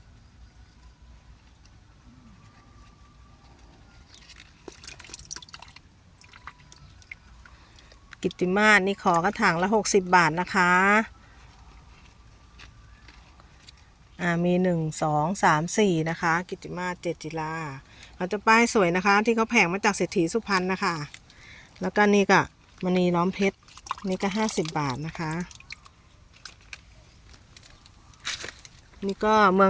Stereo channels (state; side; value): identical; both; correlation 1.00